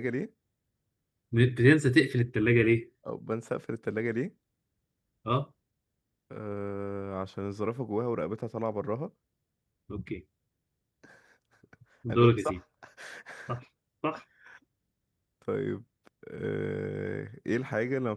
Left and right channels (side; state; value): both; identical; correlation 1.00